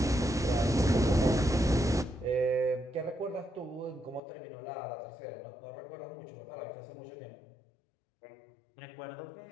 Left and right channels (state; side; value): drops out; right; at 4.2 s